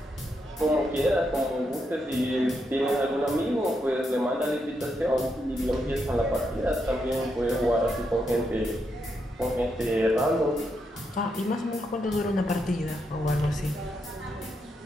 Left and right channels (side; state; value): both; normal; correlation 0.81